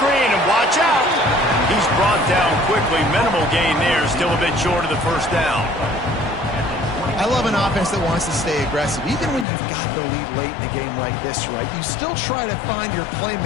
and watch out. He's brought down quickly. Minimal gain there. Still a bit short of the first down. I love an offense that wants to stay aggressive. Even when you've got the lead late in a game like this, right, you still try to find your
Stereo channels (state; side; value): drops out; right; at 9.5 s